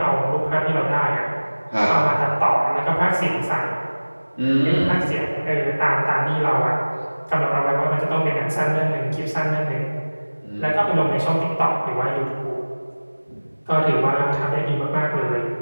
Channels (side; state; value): both; inverted; correlation -1.00